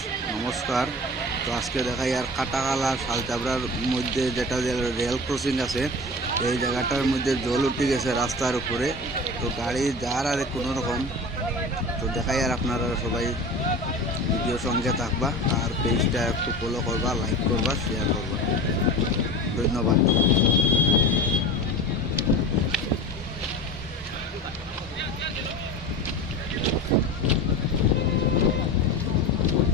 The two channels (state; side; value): normal; both; correlation 0.33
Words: নমস্কার। তো আজকে দেখাই আর কাটাখালা শালচাবড়ার মধ্যে যেটা রেল ক্রসিং আছে, এই জায়গাটার মধ্যে জল উঠে গেছে রাস্তার উপরে। তো গাড়ি যার আর কোনো রকম। তো দেখাই আর আপনারা সবাই ভিডিও সঙ্গে থাকবা আর পেজটা একটু ফলো করবা, লাইক করবা, শেয়ার করবা। ধন্যবাদ।